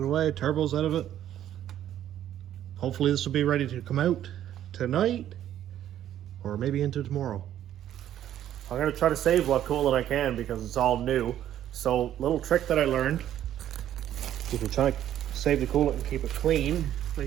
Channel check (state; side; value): quieter; left; 11.4 dB